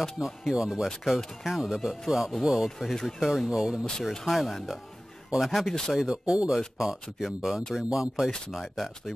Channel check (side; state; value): both; normal; correlation 0.97